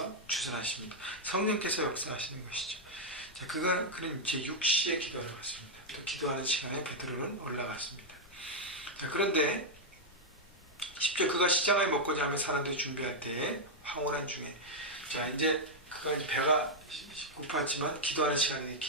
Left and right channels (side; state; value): both; normal; correlation -0.02